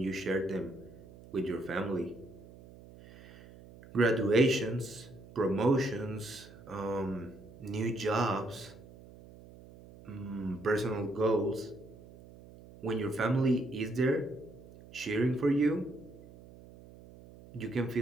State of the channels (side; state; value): right; noise; hum, 19 dB below the sound